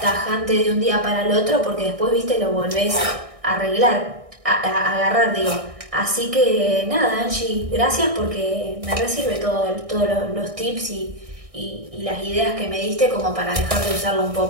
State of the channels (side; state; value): left; late; 1.6 ms